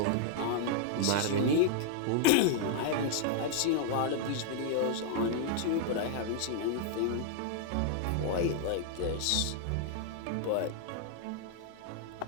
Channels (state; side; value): different; both; correlation -0.01